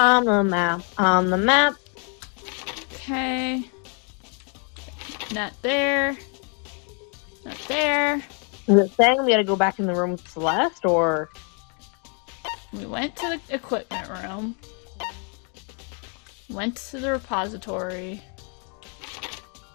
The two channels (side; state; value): right; quieter; 38.5 dB